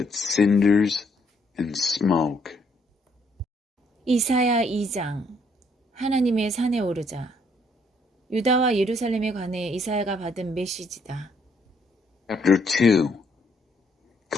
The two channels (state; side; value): normal; both; correlation 0.69